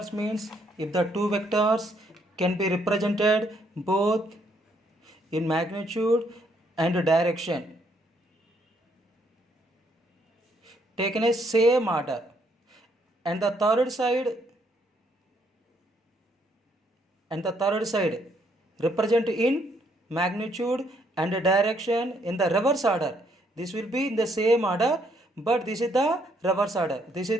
means if the two vectors can be represented both in magnitude and direction taken a same order, and the third side represent in magnitude and direction in the reverse order. This will be in the same order, but this is the reverse order. This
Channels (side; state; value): both; normal; correlation 0.70